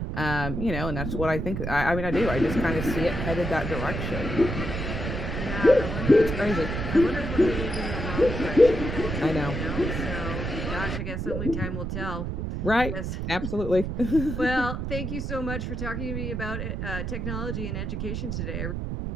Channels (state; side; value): noise; right; rumble, 3 dB below the sound